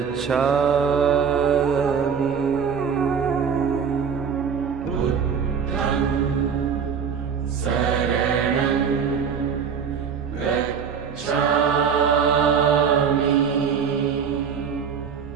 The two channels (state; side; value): quieter; left; 6.8 dB